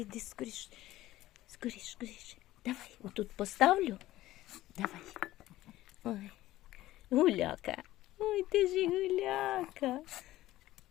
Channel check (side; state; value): right; quieter; 15.7 dB